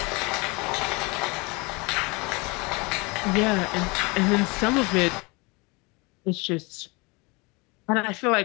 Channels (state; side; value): quieter; right; 27.4 dB